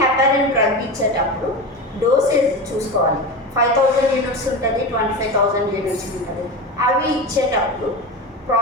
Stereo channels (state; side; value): normal; both; correlation 0.23